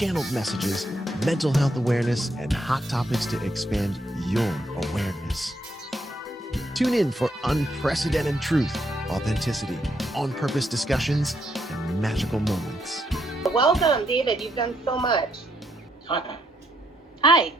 messages, mental health awareness, and hot topics to expand your awareness. Tune in for unprecedented truth, authenticity, on-purpose discussions, and magical moments. Welcome, David. You've done so much. Hi. Hi.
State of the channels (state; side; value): normal; both; correlation 0.75